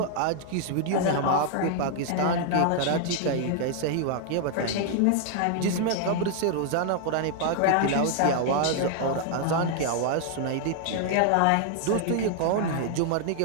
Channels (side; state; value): both; different; correlation 0.00